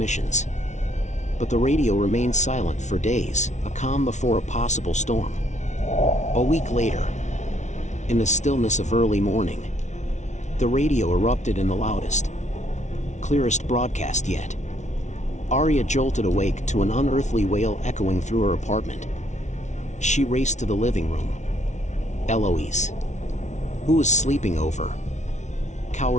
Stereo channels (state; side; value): late; right; 0.34 ms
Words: But the radio remained silent for days, a calm before a possible storm. A week later, in the stillness of early morning, the radio erupted in the loudest, clearest broadcast yet. Aria jolted awake to an unearthly wail echoing through her apartment. She raced to the living room. Eloise, who was sleeping over,